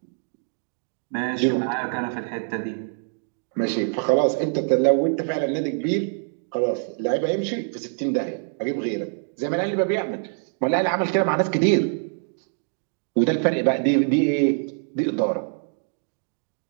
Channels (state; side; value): silent; left; 62 dB below the other